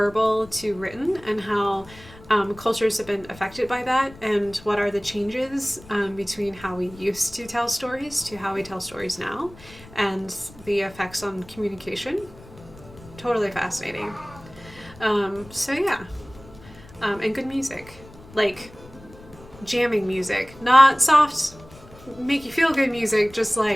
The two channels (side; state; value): left; noise; rumble, 21 dB below the sound